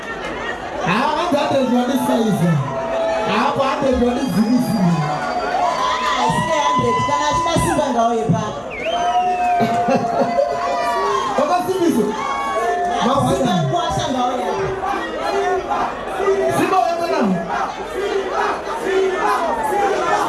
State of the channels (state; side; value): identical; both; correlation 1.00